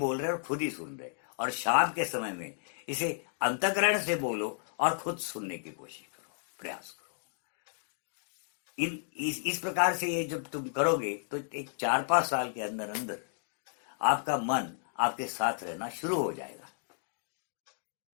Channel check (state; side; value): silent; right; digital silence